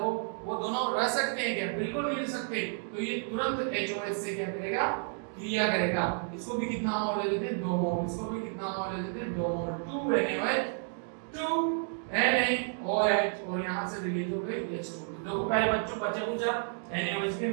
वो दोनों रह सकते हैं क्या, बिल्कुल नहीं रह सकते। तो ये तुरंत HOH से क्या करेगा, क्रिया करेगा। इसको भी कितना मोल ले लेते हैं, 2 मोल, इसको भी कितना मोल ले लेते हैं, 2 मोल, 2 NaOH, 2 NaOH, और यहाँ से रिलीज हो गई H2। देखो पहले बच्चों बच्चे पूछा NaOH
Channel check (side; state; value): left; silent; 57 dB below the other